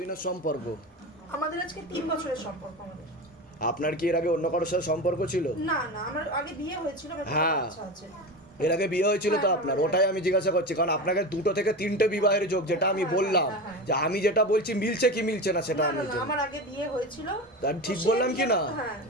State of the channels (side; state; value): both; normal; correlation 0.25